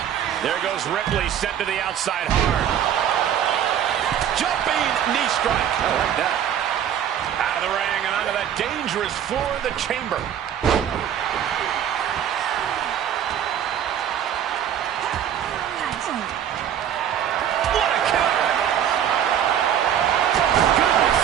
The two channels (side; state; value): left; quieter; 9.7 dB